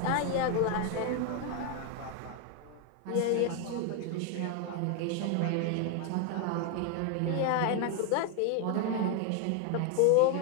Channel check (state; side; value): different; both; correlation 0.01